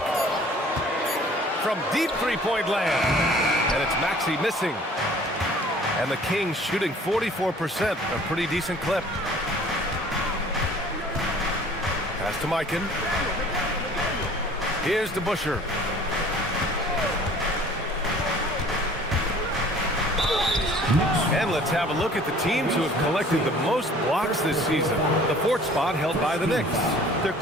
From deep three-point land. And it's Maxey missing. And the Kings shooting 44%, a pretty decent clip. Pass to Mikan. Here's DeBusschere. And let's have a look at the teams who have collected the most blocks this season. The 4th spot held by the Knicks. They're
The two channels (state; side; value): normal; both; correlation 0.51